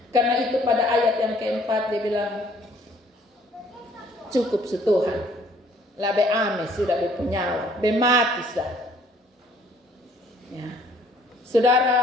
Karena itu pada ayat yang keempat dia bilang, cukup setuhan. Labe ame sudah berpenyawa, bemati sah. Ya.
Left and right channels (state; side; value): normal; both; correlation 0.60